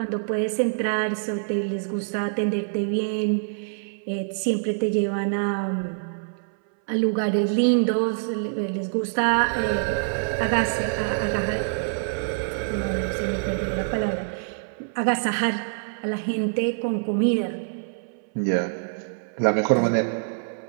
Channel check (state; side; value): silent; left; 62 dB below the other